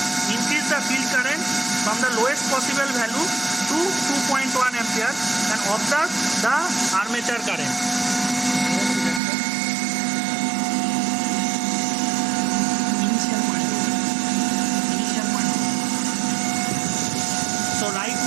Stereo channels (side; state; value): left; drops out; at 9.2 s